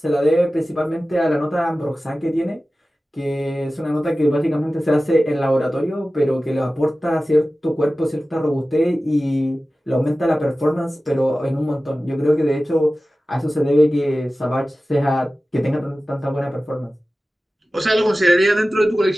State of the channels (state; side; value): normal; both; correlation 0.96